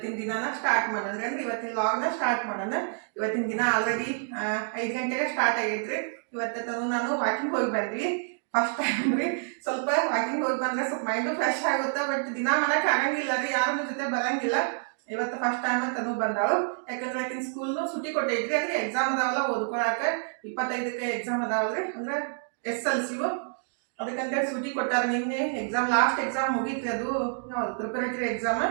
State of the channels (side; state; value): left; silent; digital silence